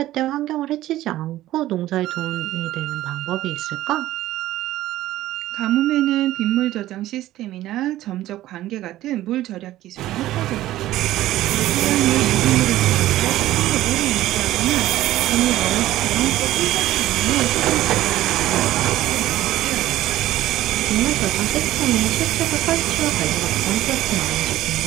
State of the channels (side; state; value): left; quieter; 14.9 dB